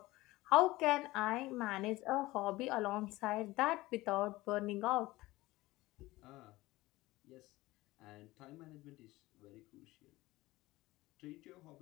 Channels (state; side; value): quieter; right; 19.1 dB